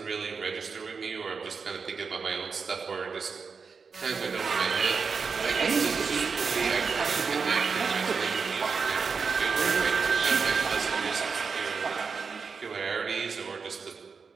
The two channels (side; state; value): left; quieter; 5.3 dB